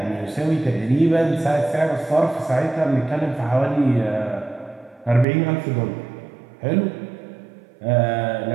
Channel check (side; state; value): left; drops out; at 5.2 s